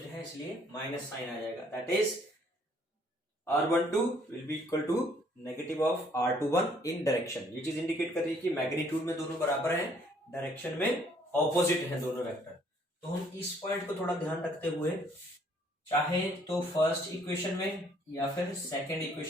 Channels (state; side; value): normal; both; correlation 0.63